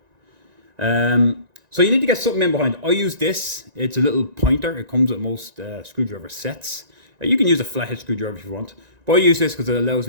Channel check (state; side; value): late; left; 1.9 ms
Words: So you need to get something in behind. I use this. It's a little pointer. It comes with most screwdriver sets. You can use a flathead screwdriver if you want, but I use this because it allows